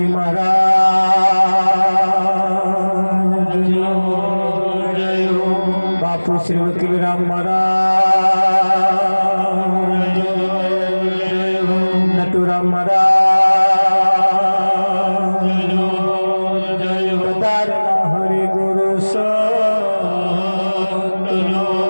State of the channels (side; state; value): both; inverted; correlation -1.00